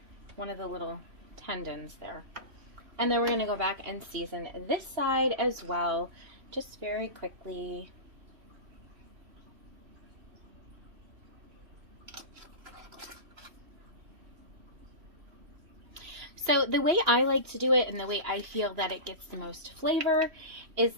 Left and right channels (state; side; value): late; left; 3.1 ms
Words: one of the little tendons there. And then we're going to go back and season this side as well, just very quickly. So the way I like to do it, and the way I feel that it gets the most flavor, is